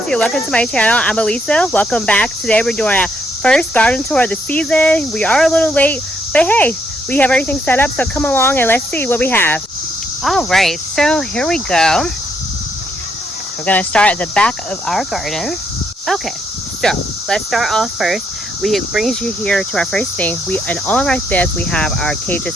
you? Welcome to my channel. I'm Alisa. Welcome back. Today we're doing our first garden tour of the season. We are a little late, but hey, we have everything set up, so come along and let's see what we have. All right, so here we go. We're going to start at the back of our garden. Okay, so let's start off first. It brings you here to our first thing. In all of our beds, we have our cages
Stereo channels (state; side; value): normal; both; correlation 0.74